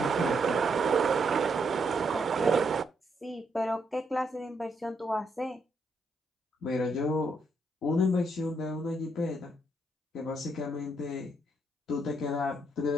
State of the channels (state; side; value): normal; both; correlation 0.76